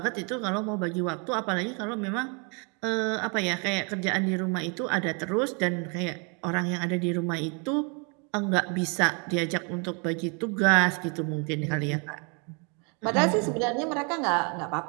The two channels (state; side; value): quieter; left; 34.9 dB